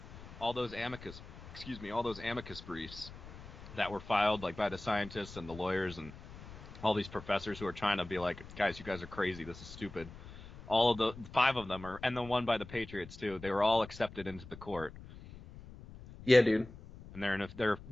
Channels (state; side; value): noise; left; rumble, 15 dB below the sound